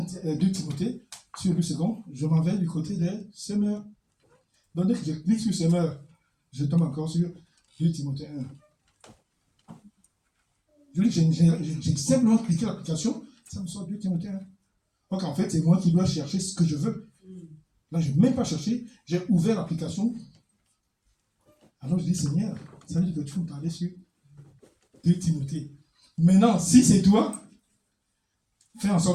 Timothée sur le second, je m'en vais du côté de Summer. Donc dès que je clique sur Summer, je tombe encore sur 2 Timothée 1. Je dis que j'ai simplement cliqué l'application, ça me sort 2 Timothée 1. Donc en fait, c'est moi qui dois chercher ce que je veux. Là, je n'ai même pas cherché, j'ai ouvert l'application. Alors je dis, Seigneur, ça veut dire que tu peux me parler sur 2 Timothée. Maintenant, si c'est toi, fais en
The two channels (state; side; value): identical; both; correlation 1.00